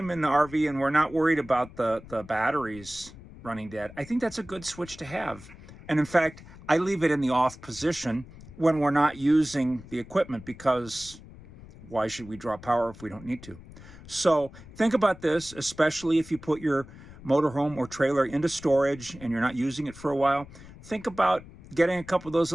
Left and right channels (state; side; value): noise; left; rumble, 18 dB below the sound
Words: in the RV and we're not worried about the batteries running dead, I think that's a good switch to have. And in fact, I leave it in the off position when we're not using the equipment, because why should we draw power if we don't need to? So think about this, especially if you put your motorhome or trailer into storage and you're not using it for a while. Think about getting a couple of those